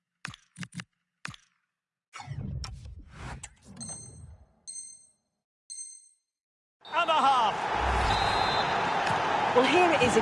And a half. Well, here it is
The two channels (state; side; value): identical; both; correlation 1.00